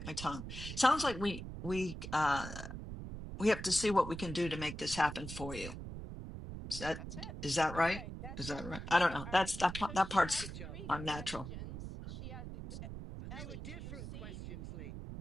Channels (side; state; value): right; noise; rumble, 8 dB below the sound